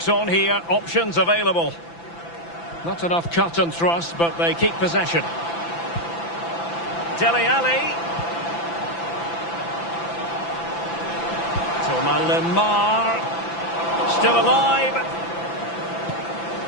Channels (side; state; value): right; late; 5.9 ms